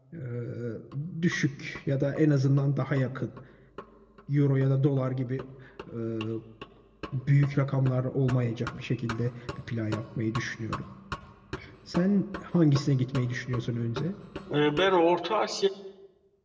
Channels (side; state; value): both; identical; correlation 1.00